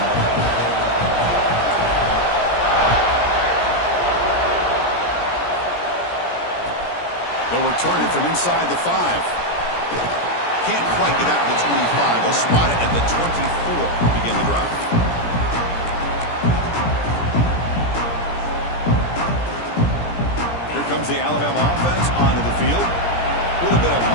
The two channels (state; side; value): late; right; 17 ms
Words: They'll return it from inside the 5. Can't quite get out to the 25. They'll spot it at the 24 to begin the drive. Comes the Alabama offense onto the field. A little bit of